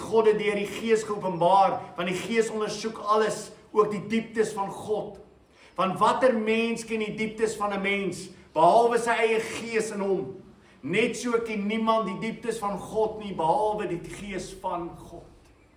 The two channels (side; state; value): both; identical; correlation 1.00